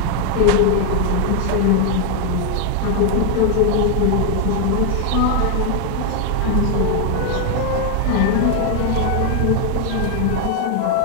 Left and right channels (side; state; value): both; different; correlation 0.01